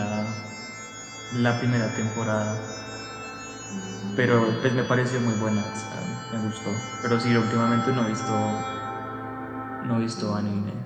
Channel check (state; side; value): identical; both; correlation 1.00